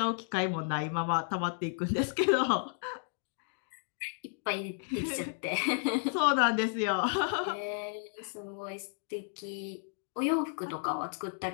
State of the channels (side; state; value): right; silent; digital silence